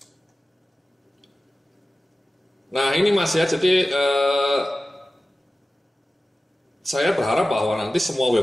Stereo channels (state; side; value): normal; both; correlation 0.95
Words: Nah ini Mas ya, jadi saya berharap bahwa nanti semua